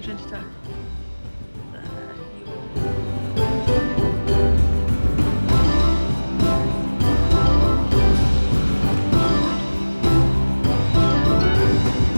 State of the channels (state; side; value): inverted; both; correlation -1.00